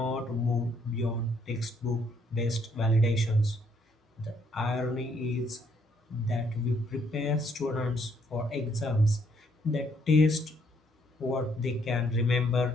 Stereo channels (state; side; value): normal; both; correlation 0.69